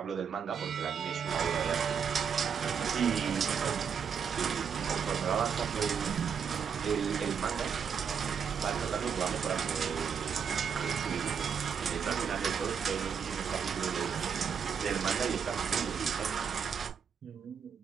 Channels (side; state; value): left; quieter; 7.0 dB